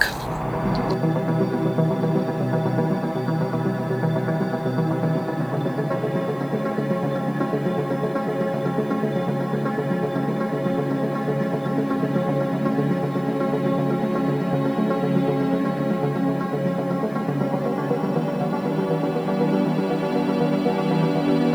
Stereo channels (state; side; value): noise; left; hiss, 29 dB below the sound